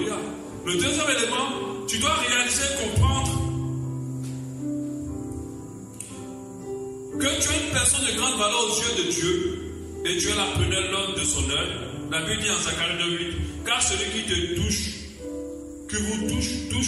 Le deuxième élément, tu dois réaliser, comprendre que tu es une personne de grande valeur aux yeux de Dieu et Dieu l'appelait l'homme de son œuvre. La Bible dit en Zacharie 2:8, car celui qui te touche, que vous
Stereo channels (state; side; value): identical; both; correlation 1.00